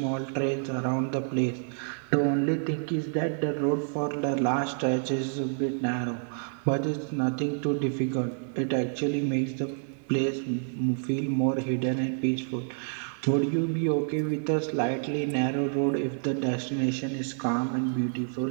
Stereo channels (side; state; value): left; silent; digital silence